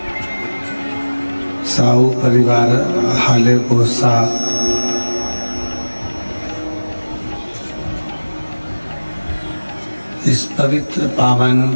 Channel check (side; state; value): both; inverted; correlation -1.00